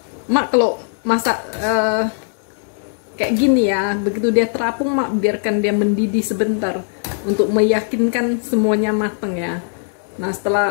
mak kalau masak kayak gini ya, begitu dia terapung mak biarkan dia mendidih sebentar untuk meyakinkan semuanya matang ya. Nah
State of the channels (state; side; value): silent; right; 67 dB below the other